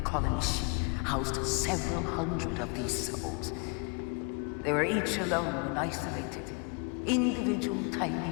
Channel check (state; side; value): quieter; right; 33.6 dB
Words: colony ship housed several hundred of these souls. They were each alone and isolated, individual tiny